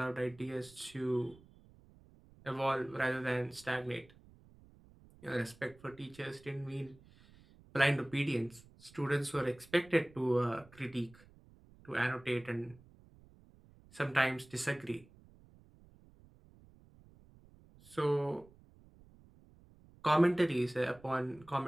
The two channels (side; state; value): right; noise; rumble, 25 dB below the sound